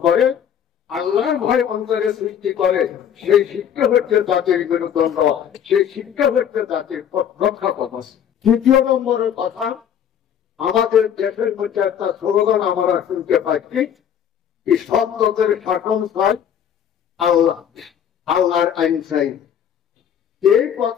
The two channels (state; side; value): quieter; right; 8.9 dB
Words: করে, আল্লাহর ভয় অন্তরে সৃষ্টি করে, সেই শিক্ষা হচ্ছে জাতির মেরুদণ্ড, সেই শিক্ষা হচ্ছে জাতির রক্ষা কবচ। তৃতীয় নম্বরের কথা, আমাদের দেশের মধ্যে একটা স্লোগান আমরা শুনতে পাচ্ছি, সব লোকের শাসন চাই, আল্লাহ আল্লাহর আইন চাই। এই